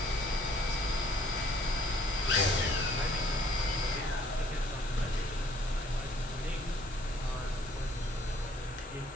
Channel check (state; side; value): normal; both; correlation 0.60